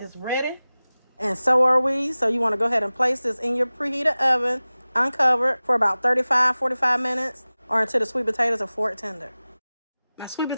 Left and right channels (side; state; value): both; inverted; correlation -0.97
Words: ready. And so are we. So you want to go ahead and place this in your preheated oven, uncovered, for about 35-45 minutes, or until the sweet potatoes are fork tender. My sweet